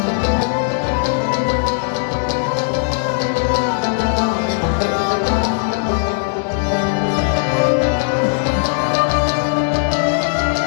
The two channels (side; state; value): right; silent; 67 dB below the other